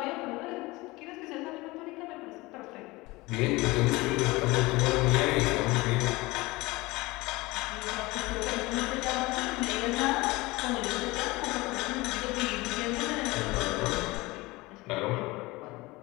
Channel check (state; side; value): quieter; right; 21.7 dB